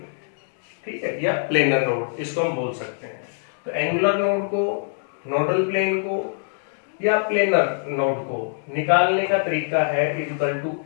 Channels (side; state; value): right; silent; digital silence